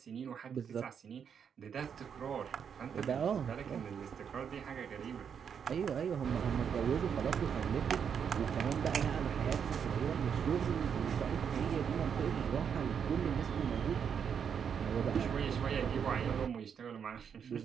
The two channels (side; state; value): left; quieter; 7.4 dB